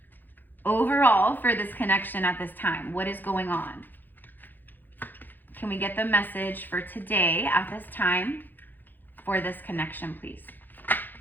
overall for this connection at this time? What is going on? Can we get the message for today at this time for this connection, please?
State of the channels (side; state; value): right; late; 0.088 ms